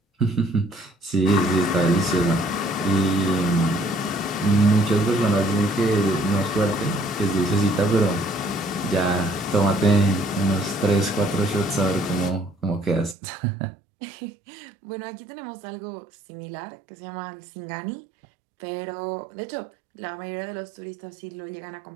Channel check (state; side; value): drops out; left; at 13.2 s